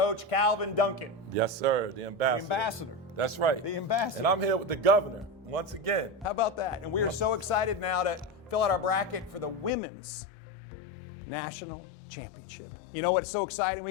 Calvin Duncan. Yes, sir. The ambassador. The ambassador. That's right. The ambassador. And I'm here with the governor once again. How about that? And we are so excited now to fill out our bracket for the Women's National Championship. You know what's so exciting?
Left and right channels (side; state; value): right; drops out; at 9.7 s